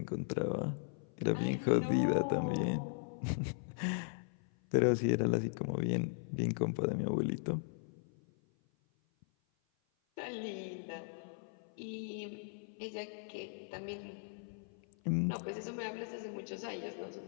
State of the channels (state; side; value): silent; right; 52 dB below the other